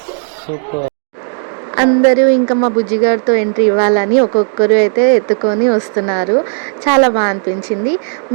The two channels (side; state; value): left; silent; digital silence